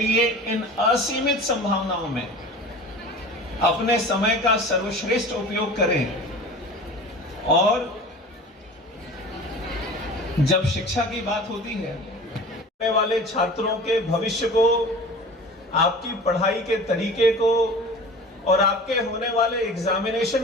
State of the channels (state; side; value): normal; both; correlation 0.39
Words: इन असीमित संभावनाओं में अपने समय का सर्वश्रेष्ठ उपयोग करें। और जब शिक्षा की बात होती है, आने वाले छात्रों के भविष्य को, आपकी पढ़ाई के तरीके को और आपके होने वाले